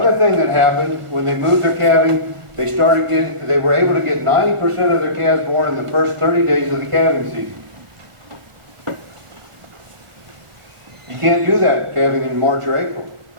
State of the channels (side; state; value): left; late; 1.4 ms